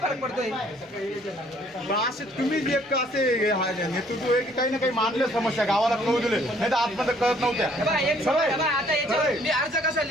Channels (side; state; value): both; normal; correlation 0.61